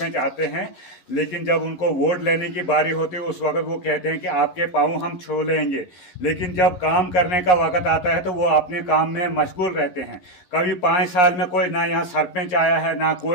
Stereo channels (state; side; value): late; right; 11 ms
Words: आते हैं, लेकिन जब उनको वोट लेने की बारी होती है उस वक्त वो कहते हैं कि आपके पाँव हम छू लेंगे, लेकिन जब काम करने का वक्त आता है तो वो अपने काम में मशगूल रहते हैं। कभी 5 साल में कोई ना यहाँ सरपंच आया है ना